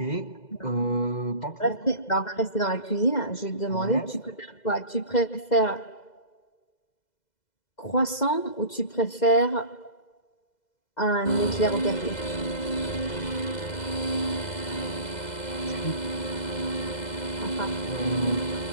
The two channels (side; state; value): right; late; 2.0 ms